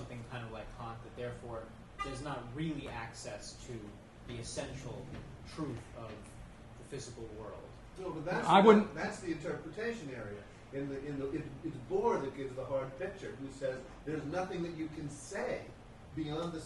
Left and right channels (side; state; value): both; identical; correlation 1.00